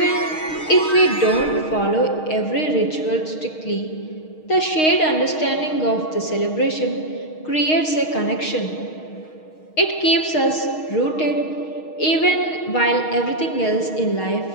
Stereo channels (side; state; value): right; late; 6.4 ms